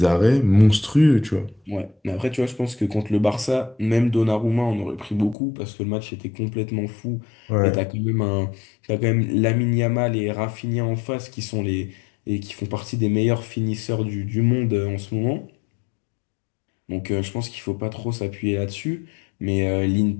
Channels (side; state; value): right; drops out; at 5.4 s